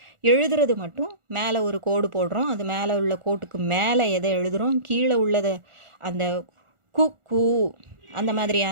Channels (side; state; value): left; late; 1.4 ms